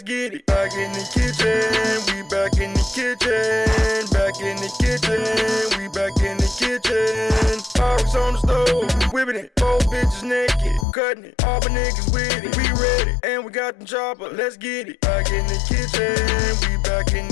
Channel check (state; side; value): drops out; right; at 10.9 s